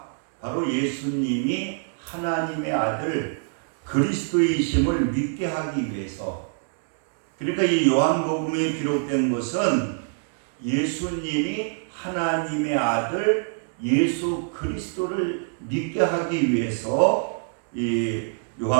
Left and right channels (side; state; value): left; silent; digital silence